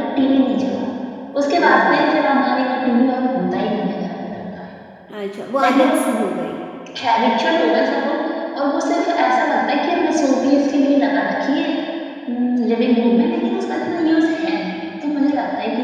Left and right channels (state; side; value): identical; both; correlation 1.00